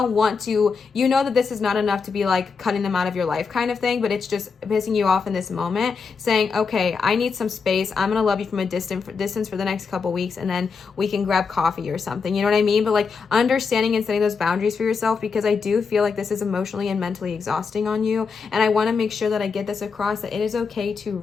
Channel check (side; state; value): right; quieter; 5.3 dB